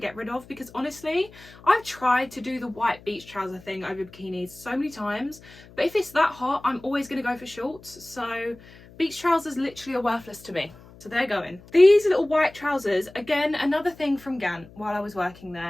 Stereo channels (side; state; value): left; noise; hum, 22 dB below the sound